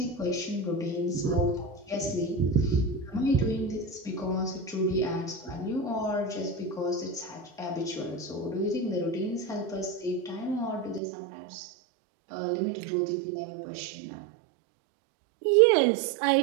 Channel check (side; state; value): left; drops out; at 11.0 s